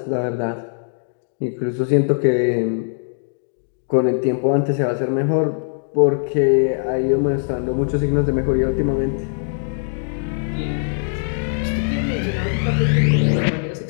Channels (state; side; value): silent; right; digital silence